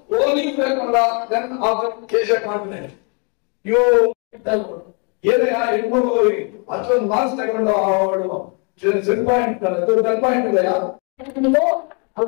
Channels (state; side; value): quieter; right; 36.2 dB